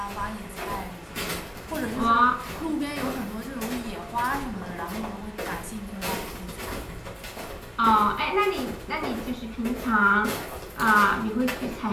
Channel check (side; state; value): both; identical; correlation 1.00